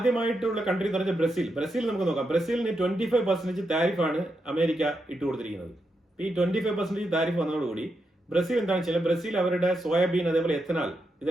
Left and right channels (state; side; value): normal; both; correlation 0.84